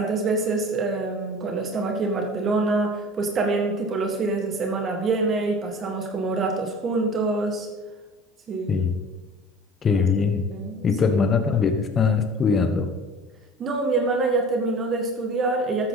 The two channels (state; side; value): normal; both; correlation 0.42